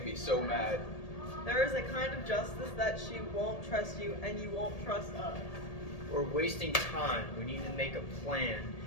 me so mad. There is a kind of justice that she won't trust you and you won't trust us. We're wasting time. We need to make a plan.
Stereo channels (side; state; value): right; late; 1.8 ms